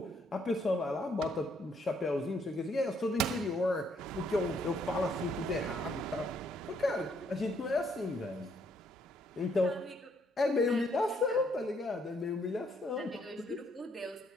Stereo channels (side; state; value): both; normal; correlation 0.70